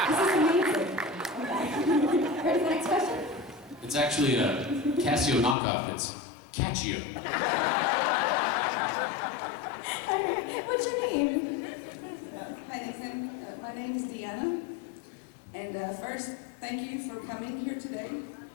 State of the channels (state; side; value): drops out; right; at 5.6 s